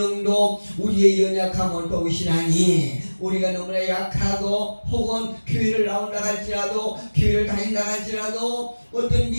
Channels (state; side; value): inverted; both; correlation -1.00